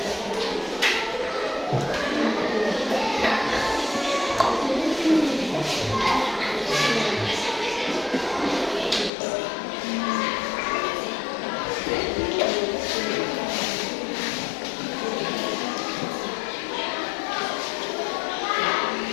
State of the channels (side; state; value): right; drops out; at 9.1 s